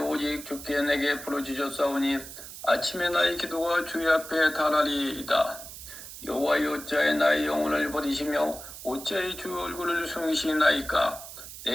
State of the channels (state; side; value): noise; right; hiss, 13 dB below the sound